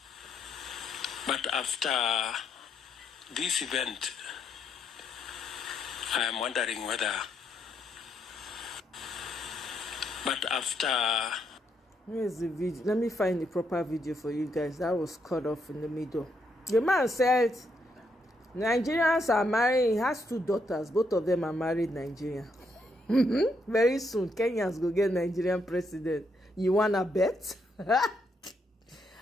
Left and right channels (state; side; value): normal; both; correlation 0.76